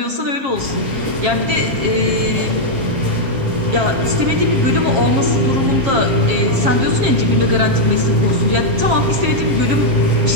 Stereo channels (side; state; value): left; late; 7.4 ms